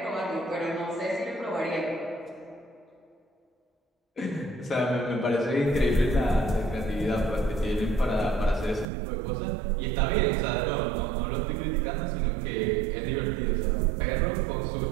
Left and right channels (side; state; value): left; drops out; at 8.8 s